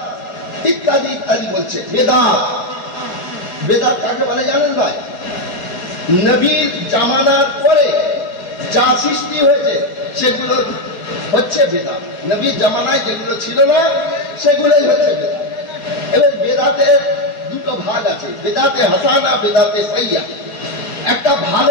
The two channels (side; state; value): right; late; 4.5 ms